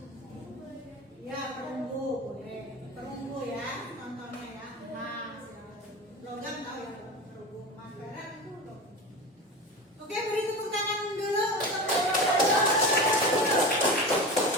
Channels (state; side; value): normal; both; correlation 0.28